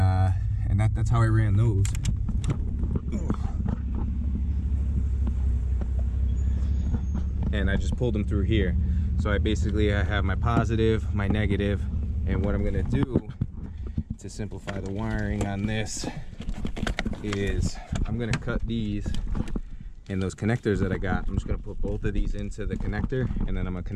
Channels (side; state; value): both; identical; correlation 1.00